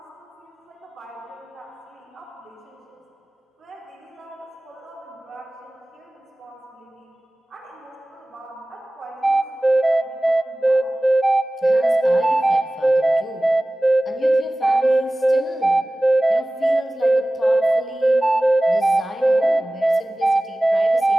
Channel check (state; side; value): normal; both; correlation 0.97